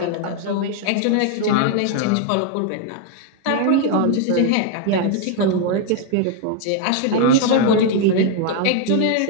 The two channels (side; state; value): both; different; correlation 0.00